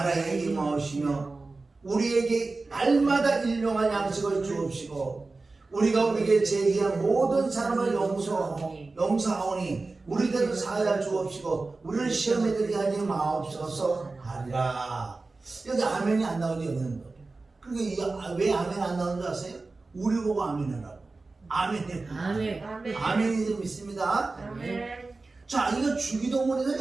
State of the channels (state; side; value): quieter; left; 3.6 dB